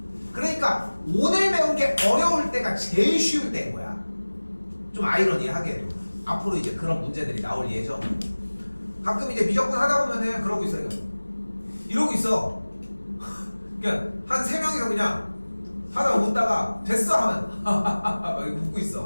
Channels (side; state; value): both; inverted; correlation -1.00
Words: 그러니까 오늘 배운 게 어려울 때가 제일 쉬울 때인 거야. 좀 아이러니하게도 앞으로 이제 그런 문제들이 나올 예정이고, 가끔 이제 미적분 하다 보면은 그러고 있어요. 이러고 있어. 그냥 한 3명이서 그냥 하다가 웃다가 됐어 하면 막 웃고